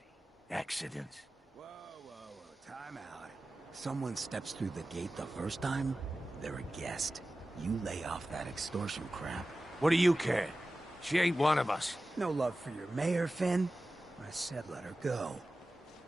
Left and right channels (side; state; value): both; normal; correlation 0.95